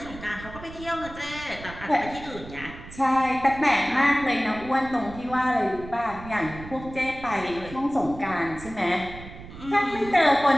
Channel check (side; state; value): right; noise; rumble, 15 dB below the sound